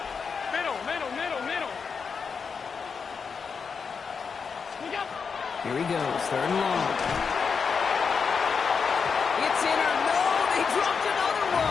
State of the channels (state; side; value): quieter; right; 5.7 dB